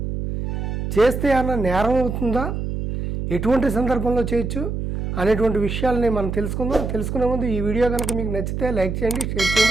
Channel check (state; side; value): noise; right; hum, 3 dB below the sound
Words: చేస్తే ఏమన్నా నేరం అవుతుందా? ఎటువంటి సందర్భంలో చేయొచ్చు అనేటువంటి విషయాలని మనం తెలుసుకుందాం. తెలుసుకునే ముందు ఈ వీడియో కనుక మీకు నచ్చితే లైక్ చేయండి, షేర్